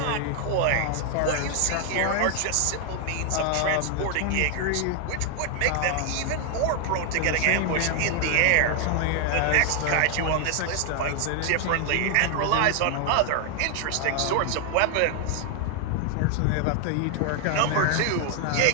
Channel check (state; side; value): different; both; correlation 0.00